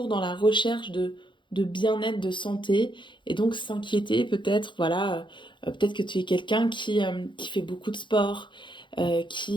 dans la recherche de bien-être, de santé et donc s'inquiéter peut-être, voilà, peut-être que tu es quelqu'un qui fait beaucoup de sport,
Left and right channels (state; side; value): late; right; 0.23 ms